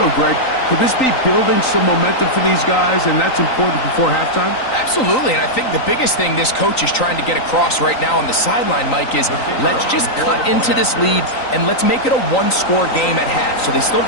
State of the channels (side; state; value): right; late; 3.9 ms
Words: know, Greg, could this be building some momentum for these guys, and that's important before halftime? Absolutely, and I think the biggest thing this coach is trying to get across right now on the sideline, Mike, is let's just cut into this lead and let's make it a one-score game at half. So they still